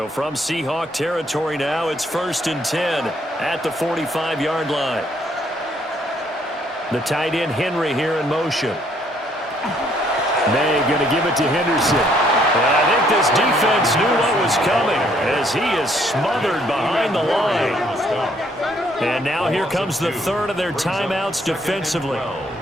from Seahawk territory now, it's 1st and 10 at the 45-yard line. The tight end Henry here in motion. May going to give it to Henderson. And I think this defense knew what was coming as he is smothered behind the line. And now here comes the third of their timeouts defensively.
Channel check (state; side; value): normal; both; correlation 0.67